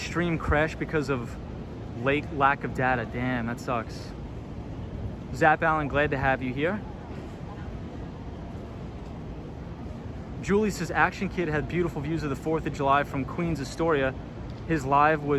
crashed because of lack of data. Damn, that sucks. Zap Allen, glad to have you here. Julie says Action Kid had beautiful views of the 4th of July from Queens Astoria. His live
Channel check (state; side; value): identical; both; correlation 1.00